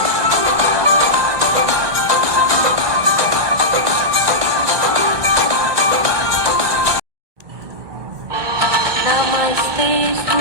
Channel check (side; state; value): left; late; 1.2 ms